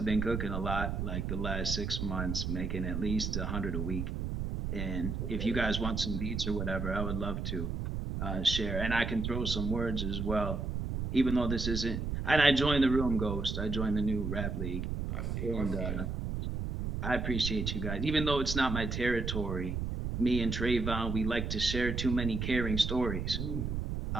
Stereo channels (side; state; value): right; noise; rumble, 2 dB below the sound